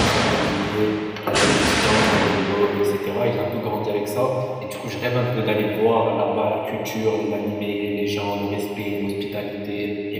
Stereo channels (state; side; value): identical; both; correlation 1.00